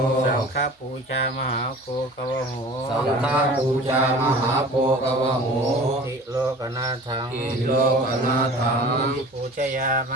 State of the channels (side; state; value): both; normal; correlation 0.42